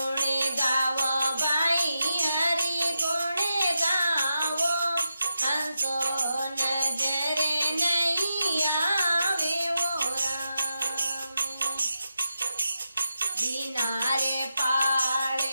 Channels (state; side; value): inverted; both; correlation -0.87